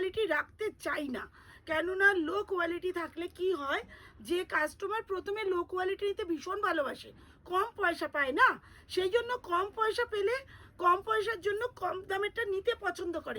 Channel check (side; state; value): both; identical; correlation 1.00